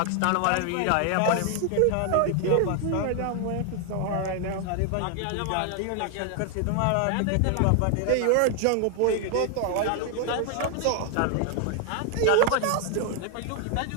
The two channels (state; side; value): different; both; correlation 0.00